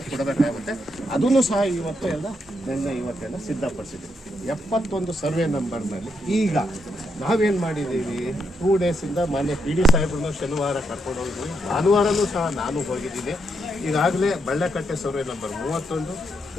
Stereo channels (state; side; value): normal; both; correlation 0.80